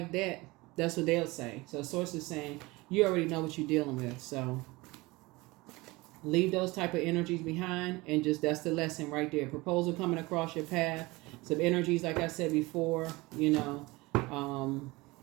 that. That's what they'll say. So Source is saying, you already know what you're dealing with. So leave those type of energies behind and just, that's the lesson right there. Proposal coming across your path. Some energies, like I said before, like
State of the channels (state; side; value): quieter; left; 22.3 dB